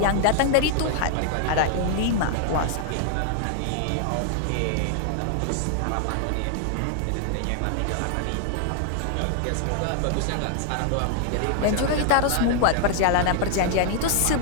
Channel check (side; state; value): both; different; correlation 0.00